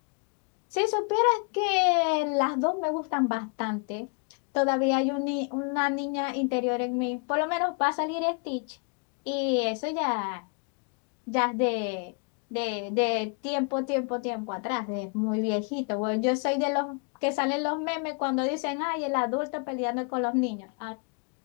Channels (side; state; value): right; quieter; 36.9 dB